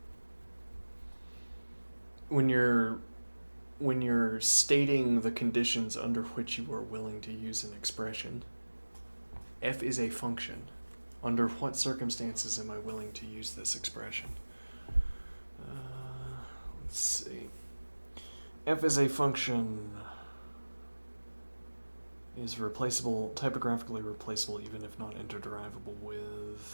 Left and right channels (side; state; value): both; inverted; correlation -1.00